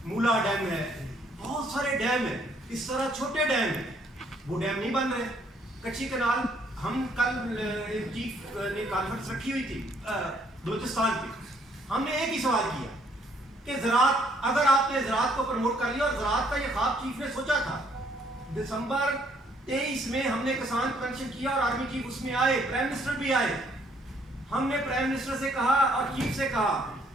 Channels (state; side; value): normal; both; correlation 0.66